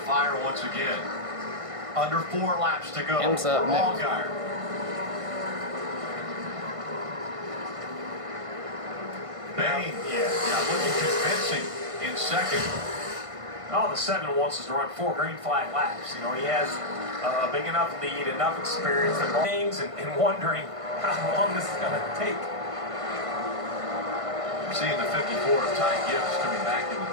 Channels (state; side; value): late; left; 1.5 ms